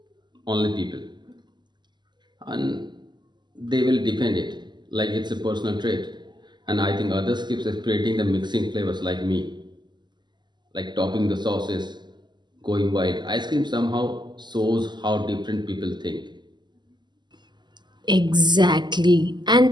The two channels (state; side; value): late; left; 0.21 ms